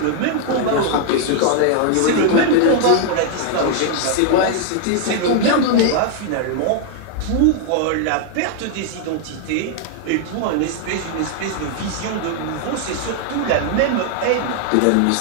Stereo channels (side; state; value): both; different; correlation 0.00